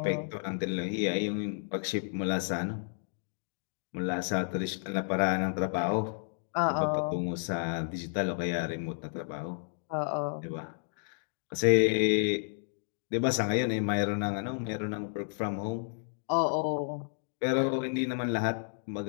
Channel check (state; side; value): silent; right; digital silence